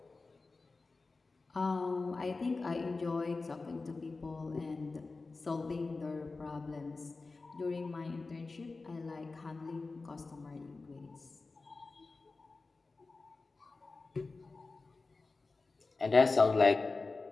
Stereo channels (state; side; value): quieter; right; 3.8 dB